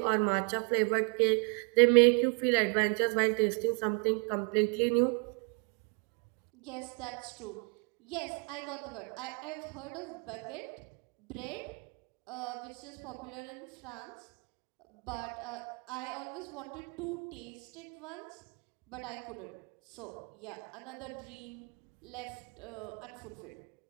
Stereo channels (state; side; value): quieter; left; 34.2 dB